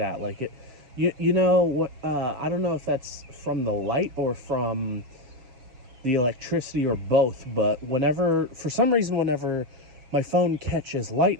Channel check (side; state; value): left; late; 7.5 ms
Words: Like it, you know what? I don't know if that's from the light or from the electricity or both. But for some reason, whenever my phone catches